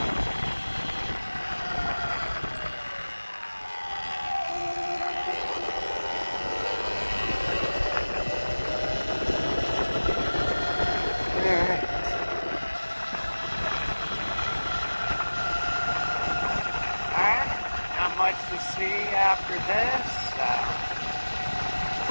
Much to see after this.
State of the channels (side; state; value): both; inverted; correlation -1.00